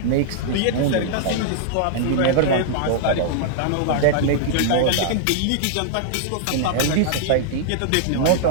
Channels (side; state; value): both; different; correlation -0.01